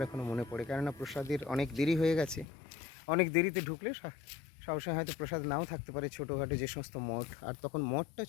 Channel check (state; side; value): drops out; right; at 2.5 s